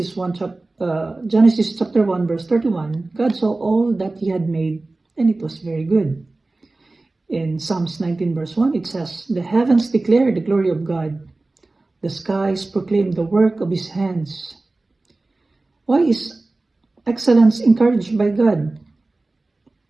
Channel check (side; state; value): left; quieter; 3.2 dB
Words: chapter 1 verse 31, God saw all that He had made and it was very good. In Psalms 19 verse 1, it says, "The heavens declare the glory of God. The skies proclaim the work of His hands." Why is excellence encouraged by God?